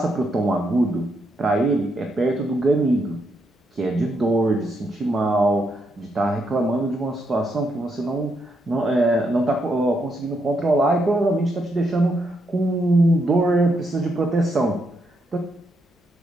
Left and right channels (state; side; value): normal; both; correlation 0.79